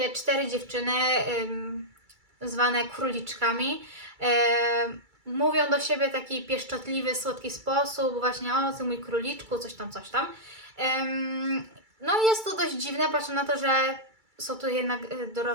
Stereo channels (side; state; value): left; late; 2.3 ms